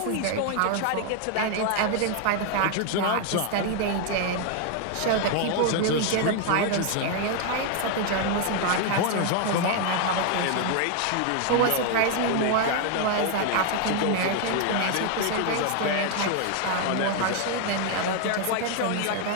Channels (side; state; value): both; different; correlation 0.00